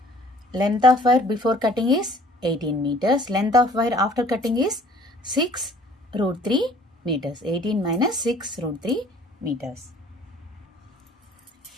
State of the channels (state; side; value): normal; both; correlation 0.53